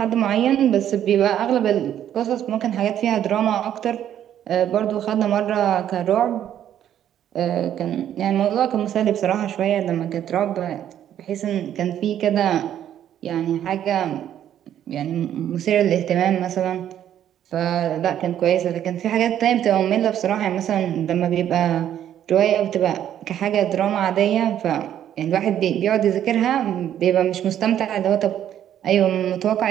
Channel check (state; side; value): quieter; left; 10.6 dB